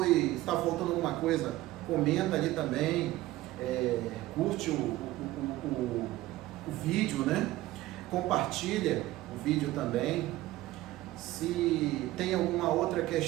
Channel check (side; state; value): left; quieter; 16.6 dB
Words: está faltando alguma coisa, comenta ali também, curte o vídeo, né, compartilha o vídeo também. Se tem alguma outra